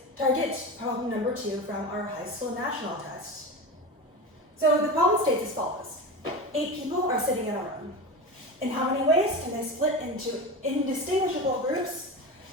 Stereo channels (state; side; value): normal; both; correlation 0.26